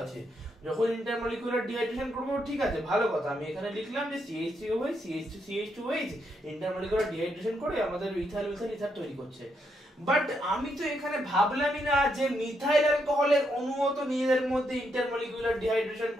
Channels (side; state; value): both; normal; correlation 0.78